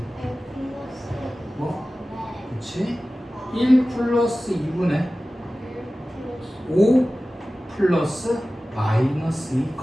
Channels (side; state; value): both; normal; correlation 0.96